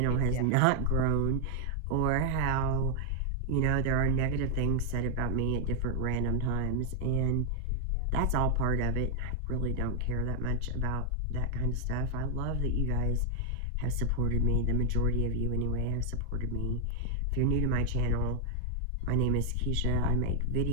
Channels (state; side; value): different; both; correlation 0.00